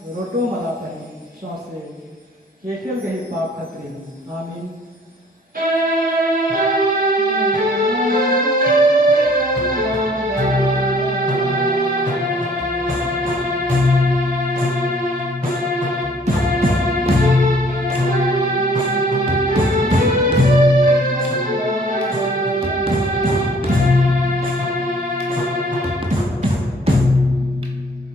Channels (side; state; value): both; normal; correlation 0.57